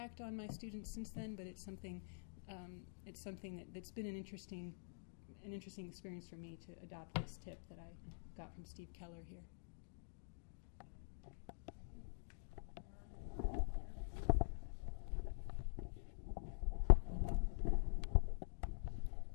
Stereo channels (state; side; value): silent; right; digital silence